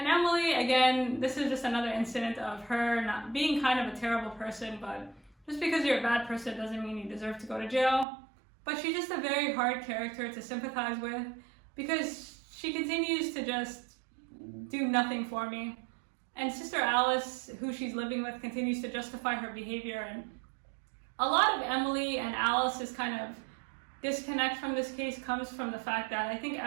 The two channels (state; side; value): drops out; left; at 8.1 s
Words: Emily, again, this is just another incident of her not being kind of a terrible person, but just because you're a bad person doesn't mean you deserve to go to jail. But she's just a very hard character to sympathize with, because she continues to just do nothing for me. And Sister Alice, who she's living with, continues to justify her behavior. And a lot of Emily and Alice's kind of disconnect from this case comes from the fact that I think